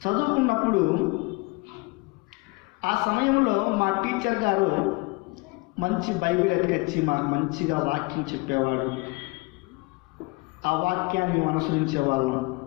చదువుకున్నప్పుడు ఆ సమయంలో మా టీచర్ గారు మంచి బైబిల్ ఎత్తుకొచ్చి మాకు మంచిగా వాక్యం చెప్పేవాడు. ఆ వాక్యాన్ని అనుసరించేవాళ్ళం.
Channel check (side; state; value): right; quieter; 26.9 dB